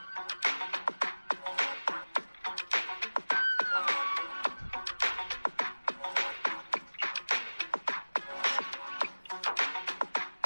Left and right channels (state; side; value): inverted; both; correlation -1.00